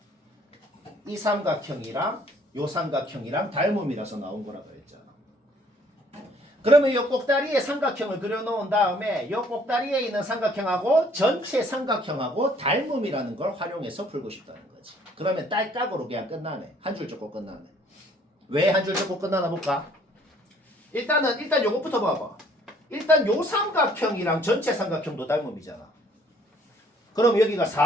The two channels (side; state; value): both; normal; correlation 0.60